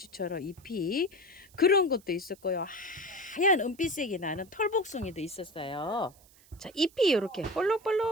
잎이 그런 것도 있었고요. 하얀 은빛색이 나는 털복숭이도 있었어요. 자, 잎이 이렇게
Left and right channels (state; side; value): noise; right; hiss, 27 dB below the sound